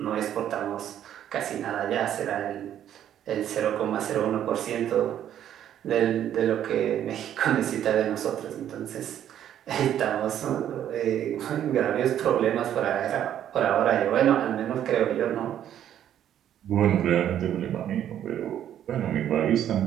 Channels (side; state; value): left; quieter; 10.6 dB